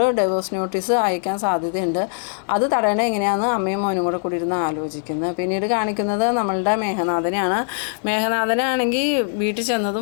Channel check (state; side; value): silent; right; digital silence